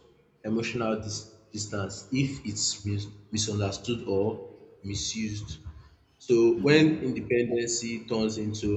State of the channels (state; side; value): identical; both; correlation 1.00